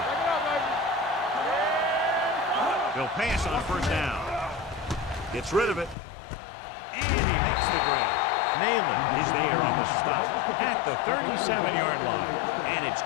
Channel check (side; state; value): right; drops out; at 6.0 s